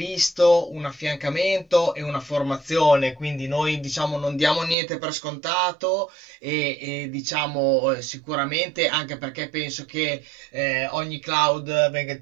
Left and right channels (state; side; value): drops out; left; at 4.8 s